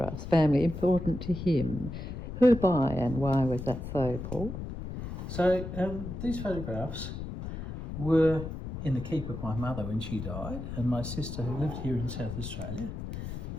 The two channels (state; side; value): noise; left; rumble, 7 dB below the sound